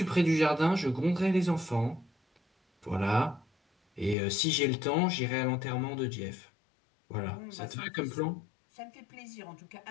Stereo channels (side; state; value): right; drops out; at 4.2 s